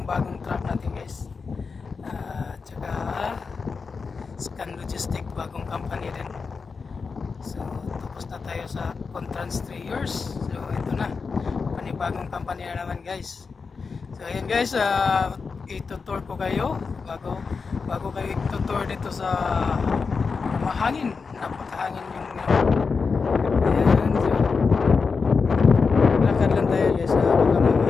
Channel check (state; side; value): quieter; right; 4.9 dB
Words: bagong truck natin guys. Tsaka Scan Logistic, bagong company din. So tapos na tayo sa Contrans 3 years. So ito na, panibagong company na naman guys. So ayan guys, itutour ko kayo bago kayo itutour dito sa mahangin, napakahangin yung ayan. So lakad lang tayo guys, baka